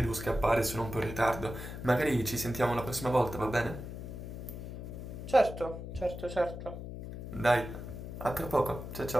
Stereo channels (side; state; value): left; noise; hum, 9 dB below the sound